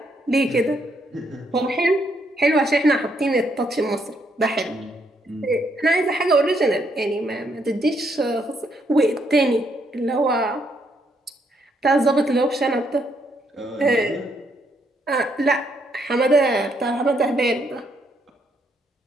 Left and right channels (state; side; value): normal; both; correlation 0.74